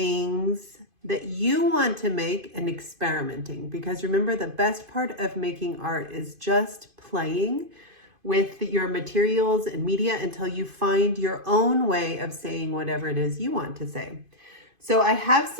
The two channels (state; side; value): late; left; 2.5 ms